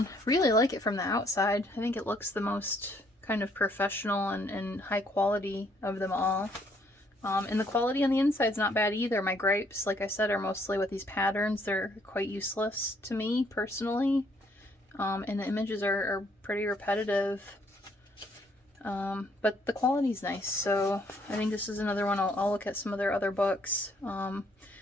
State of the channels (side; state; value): both; normal; correlation 0.67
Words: Really like it from the outside. I think it looks the most kind of professional and high quality of them all. And the quality on the inside is not bad either. My gripes, like I said, are mostly with these patterns. They're quite useless to me personally. And the images are pretty repetitive. But the quality's nice, so I think this is another one. I'll look at some of their other books.